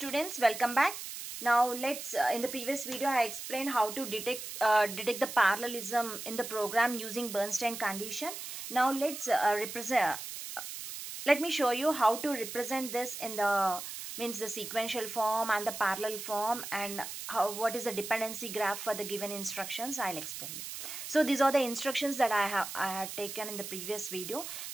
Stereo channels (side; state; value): right; noise; hiss, 8 dB below the sound